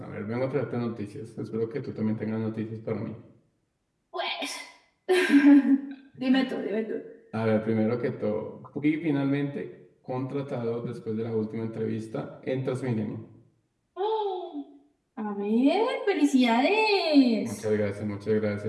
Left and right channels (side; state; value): both; identical; correlation 1.00